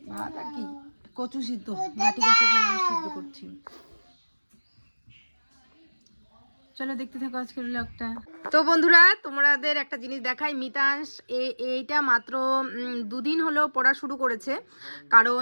কি কচু সিদ্ধ, ঘাটি কচু সিদ্ধ করছি। চলো দেখতে থাকো আজকের ব্লগটা। তো বন্ধুরা, তোমাদের একটা জিনিস দেখাই। মিতাংশ এইটা মাত্র 2 দিন হলো পড়া শুরু করেছে, কারণ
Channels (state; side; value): inverted; both; correlation -1.00